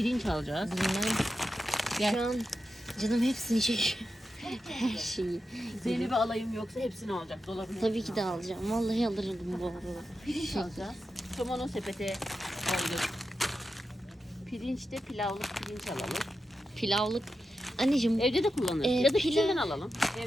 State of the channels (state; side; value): normal; both; correlation 0.89